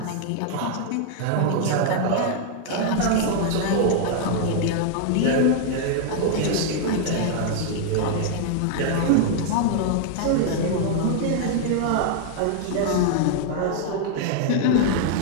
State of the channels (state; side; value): different; both; correlation -0.01